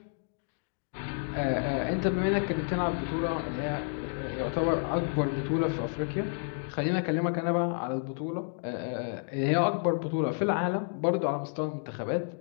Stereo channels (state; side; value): silent; right; 56 dB below the other